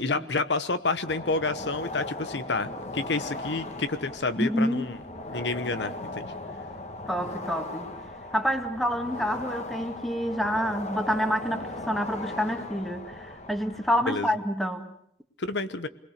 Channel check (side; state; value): both; normal; correlation 0.48